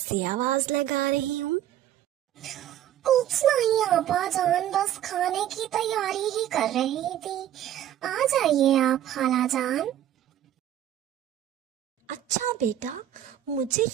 आवाज लगा रही हूँ। कुछ नहीं आपा जान, बस खाने की तैयारी ही कर रही थी। आ जाइए आप खाला जान। अच्छा बेटा, मुझे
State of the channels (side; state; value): left; quieter; 11.7 dB